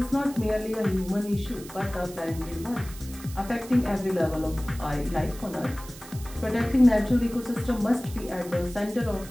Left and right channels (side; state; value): right; noise; hiss, 17 dB below the sound